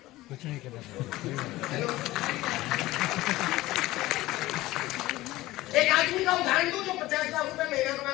कुछ नहीं करना पड़ता। हेलो, एक आदमी का उदाहरण दो जो 50 लाख रुपए महीना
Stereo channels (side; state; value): right; quieter; 17.6 dB